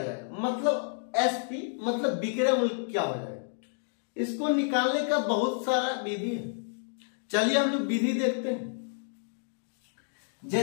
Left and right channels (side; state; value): right; silent; digital silence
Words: मतलब SP मतलब विक्रय मूल्य क्या हो जाएगा। इसको निकालने का बहुत सारा विधि है। चलिए हम लोग विधि देखते हैं।